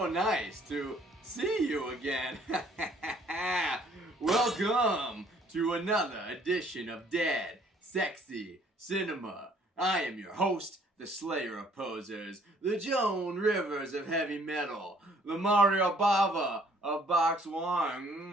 nice to see you again. Welcome to another edition of Dead Sexy Cinema. I am your host, the Slayer of Posers, the Joan Rivers of heavy metal, the Mario Bava of Box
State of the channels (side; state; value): both; normal; correlation 0.60